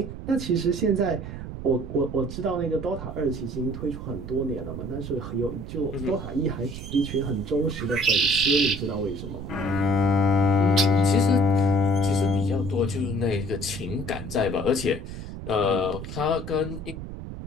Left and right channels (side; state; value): right; noise; rumble, 9 dB below the sound